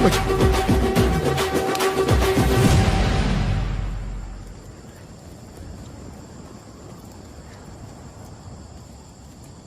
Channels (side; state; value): both; identical; correlation 1.00